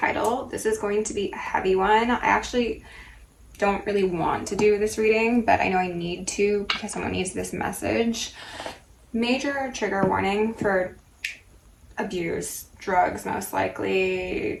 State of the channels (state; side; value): identical; both; correlation 1.00